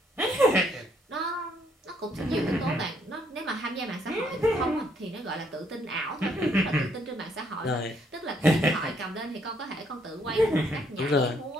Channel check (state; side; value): normal; both; correlation 0.70